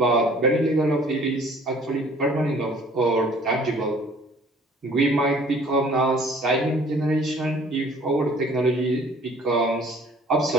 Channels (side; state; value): both; normal; correlation 0.54